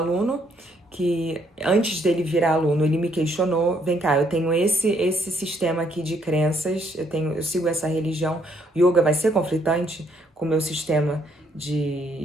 que, antes dele virar aluno, ele me questionou, vem cá, eu tenho esse sistema aqui de crenças, eu sigo essa religião, o yoga vai ser conflitante com o meu sistema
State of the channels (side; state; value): both; normal; correlation 0.70